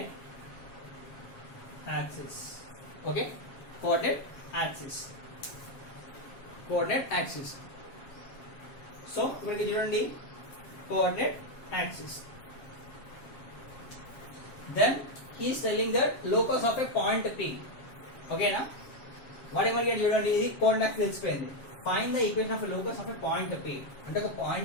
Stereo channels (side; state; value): right; late; 7.4 ms